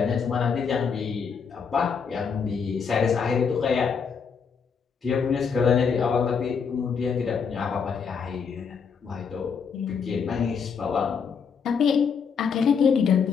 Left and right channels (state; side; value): quieter; right; 6.1 dB